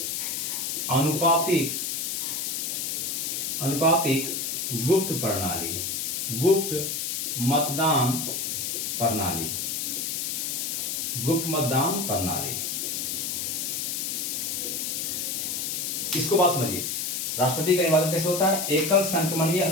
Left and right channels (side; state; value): left; noise; hiss, 1 dB below the sound